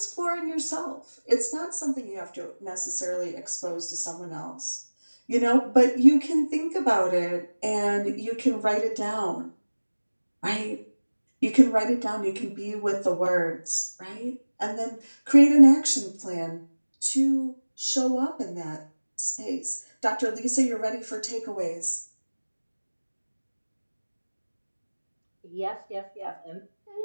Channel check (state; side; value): inverted; both; correlation -1.00